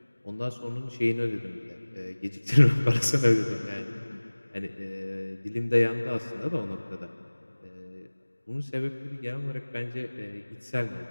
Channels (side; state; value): both; inverted; correlation -1.00